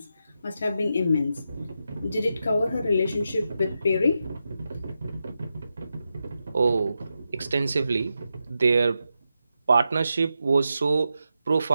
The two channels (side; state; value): both; inverted; correlation -0.88